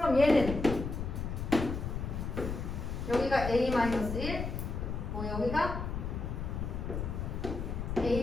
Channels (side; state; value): left; noise; rumble, 4 dB below the sound